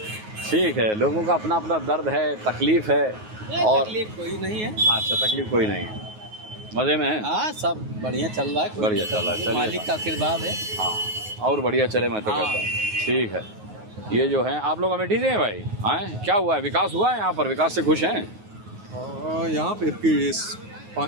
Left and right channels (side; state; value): left; late; 9.4 ms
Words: ठीक है, लोगों का अपना अपना दर्द है, तकलीफ है, और तकलीफ कोई नहीं है। अच्छा, तकलीफ कोई नहीं है, मज़े में है। हाँ सब बढ़िया चल रहा है, बढ़िया चल रहा है, चलिए मालिक का आशीर्वाद है। हाँ, और बढ़िया चले, मैं तो कहता हूँ। ठीक है, ये जो है आप लोग अमेठी से हैं भाई? हाँ, क्या हुआ है, विकास हुआ है यहाँ पर, विकास से खुश हैं? यहाँ पे